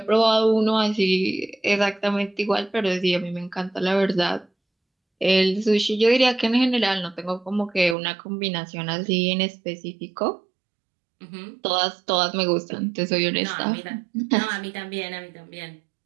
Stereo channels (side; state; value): left; drops out; at 8.0 s